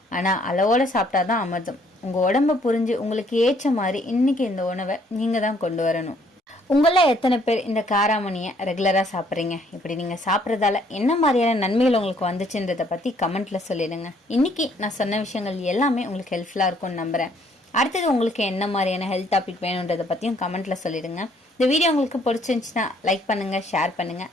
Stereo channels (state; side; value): normal; both; correlation 0.65